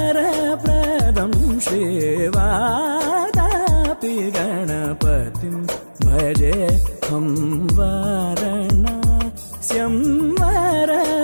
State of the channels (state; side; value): inverted; both; correlation -1.00